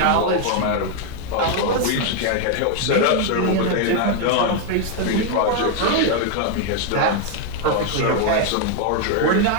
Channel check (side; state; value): both; different; correlation 0.01